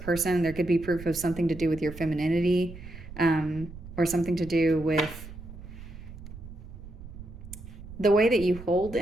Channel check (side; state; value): right; noise; rumble, 14 dB below the sound